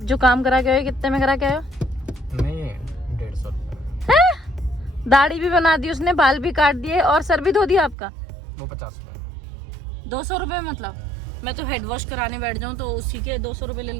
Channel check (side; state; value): left; drops out; at 8.0 s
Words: जो काम करा के आए कितने में करा के आए हो? नहीं 150 रुपये। दाढ़ी भी बना दी उसने, बाल भी काट दिए और सर भी धो दिया आपका। वो 50 रुपये। 200 रुपये मतलब? मैं तो हेड वॉश कराने बैठ जाऊँ तो उसी के 200 रुपये ले